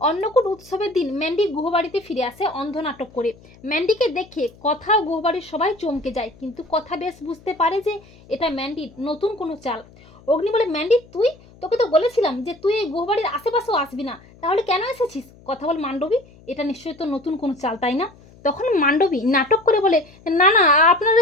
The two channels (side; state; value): left; noise; hum, 25 dB below the sound